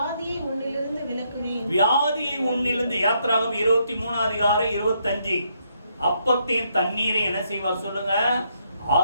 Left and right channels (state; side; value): inverted; both; correlation -0.75